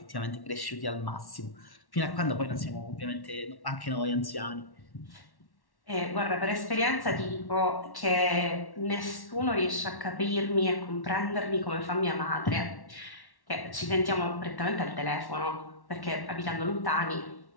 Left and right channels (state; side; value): late; right; 1.1 ms